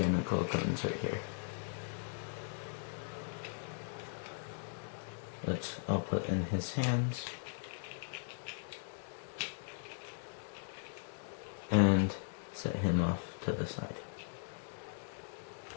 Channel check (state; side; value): silent; right; digital silence